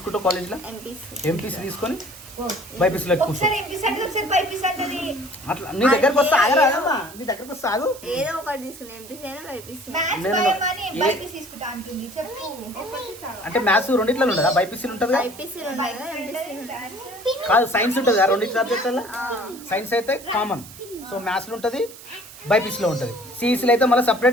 కాలేజ్లో? ఎంపీసీ తీసుకొని బైపీసీలో కూర్చో. అట్లా నీ దగ్గరకు వస్తా ఆగరాదమ్మా, నీ దగ్గరకు వస్తా ఆగు. అంటే మ్యాథ్స్ రెండిట్లో ఉండదా? బైపీసీలు ఉంటుంది కాదు, సైన్స్ ఉంటుంది కదా రెండింటి సబ్జెక్టులలో. సైన్స్ అయితే కామన్, సో మ్యాథ్స్లో ఉంటుంది, బైపీసీలో ఉంటుంది. సిఈసీలో అయితే మళ్ళీ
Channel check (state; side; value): noise; right; hiss, 17 dB below the sound